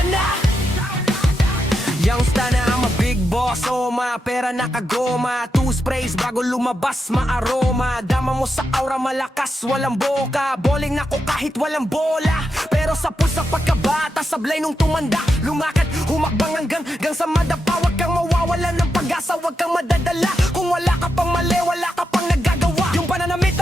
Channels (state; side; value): normal; both; correlation 0.86